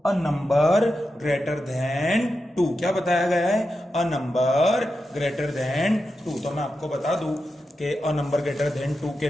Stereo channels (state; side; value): normal; both; correlation 0.89